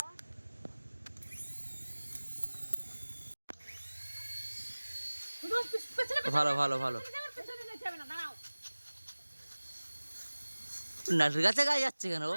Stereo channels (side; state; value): both; inverted; correlation -1.00